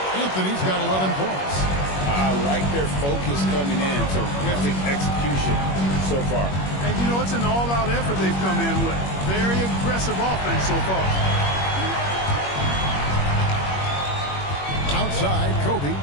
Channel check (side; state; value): right; late; 21 ms